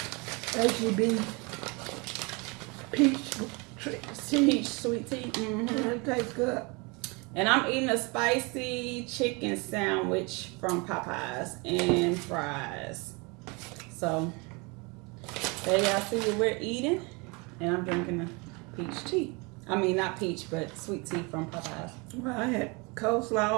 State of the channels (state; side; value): quieter; left; 28.8 dB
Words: peach sweet tea. Mm-hmm. It tastes good. And I'm eating a spicy chicken sandwich from Popeyes and fries. So, there y'all see what we're eating. And I'm drinking a peach tea. I mean, not peach, but sweet tea from Popeyes. Well, I had